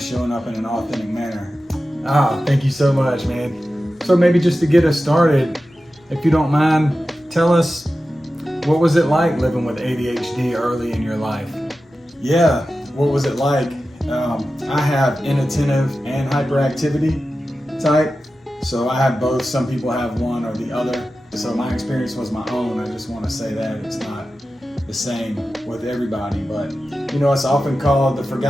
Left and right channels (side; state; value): both; normal; correlation 0.93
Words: up in an authentic manner. Thank you so much, man. So maybe just to get us started, if you don't mind, tell us, what was it like living with ADHD early in your life? Yeah, what was it like? I have inattentive and hyperactivity type, so I have both. Some people have one or the other. So my experience was my own. I just want to say that it's not the same with everybody, but it's often called the